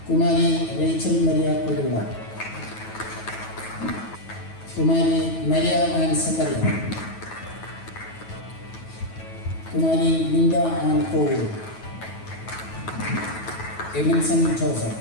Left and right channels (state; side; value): late; right; 9.2 ms